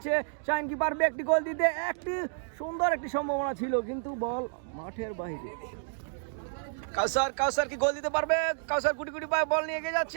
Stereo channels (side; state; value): left; silent; digital silence